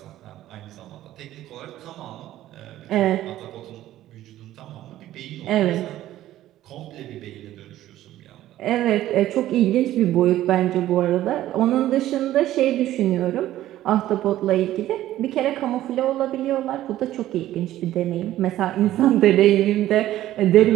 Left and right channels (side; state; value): left; quieter; 13.9 dB